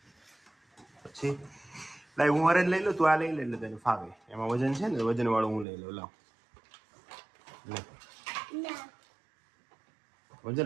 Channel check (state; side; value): drops out; left; at 5.7 s